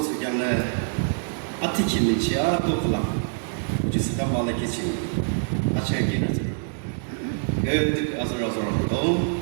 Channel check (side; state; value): left; silent; digital silence